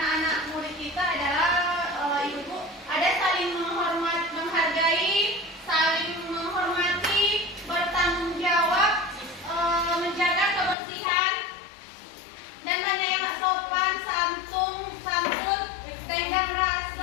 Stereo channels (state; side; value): drops out; right; at 10.8 s